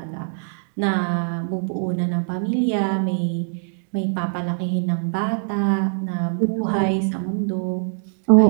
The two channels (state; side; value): silent; left; digital silence